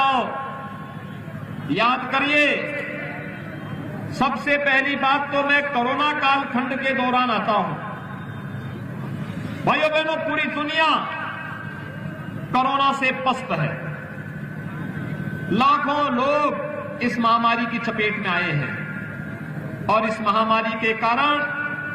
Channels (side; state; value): both; identical; correlation 1.00